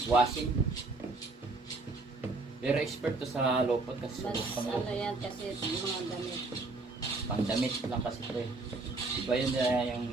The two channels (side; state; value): left; quieter; 3.5 dB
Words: Washing. Pero expert to sa lopot kasi Mas pang ano yan kasi yung mga damit. pangdamit lang kasi ito eh. Iba yun yung